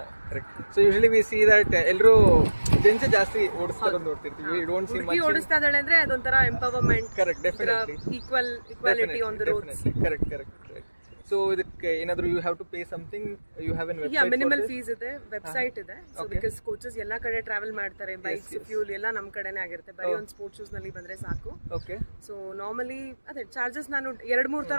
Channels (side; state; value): both; inverted; correlation -1.00